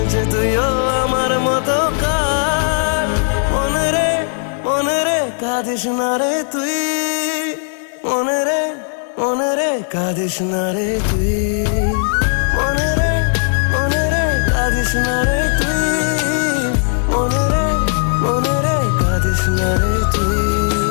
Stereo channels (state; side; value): silent; right; digital silence